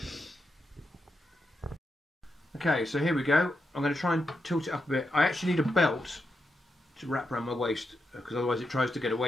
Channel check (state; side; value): normal; both; correlation 0.85